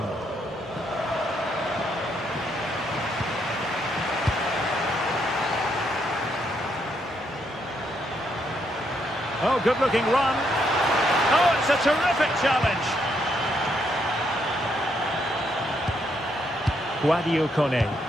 Oh, good-looking run. Oh, it's a terrific challenge. Guadio Kone.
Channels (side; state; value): both; normal; correlation 0.75